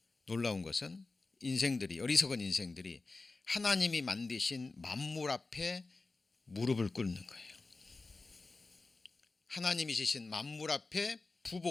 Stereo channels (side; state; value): right; quieter; 3.6 dB